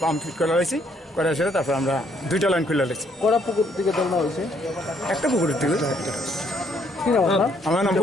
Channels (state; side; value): normal; both; correlation 0.69